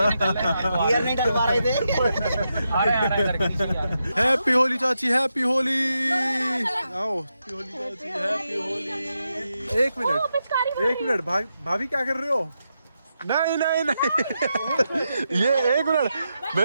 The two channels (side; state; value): both; inverted; correlation -0.86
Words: गियर नहीं डल पा रहे थे। आ रहे करके। हैप्पी होली चाची, हैप्पी होली। आओ हैप्पी होली चाची, हैप्पी होली। एक मिनट भाभी क्या कर रहे हो? नहीं नहीं नहीं ये एक मिनट,